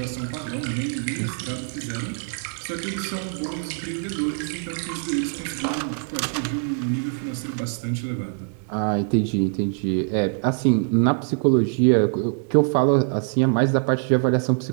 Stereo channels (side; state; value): left; silent; 63 dB below the other